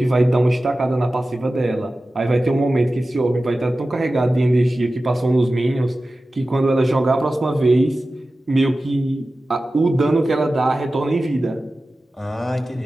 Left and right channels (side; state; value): both; normal; correlation 0.95